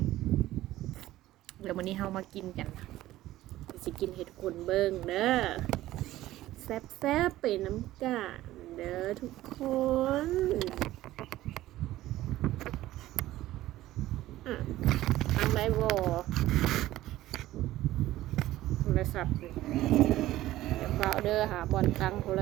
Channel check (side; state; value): left; quieter; 15.4 dB